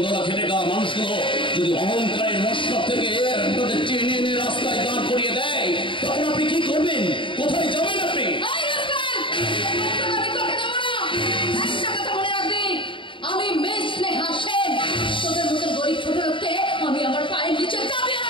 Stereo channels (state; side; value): late; right; 0.25 ms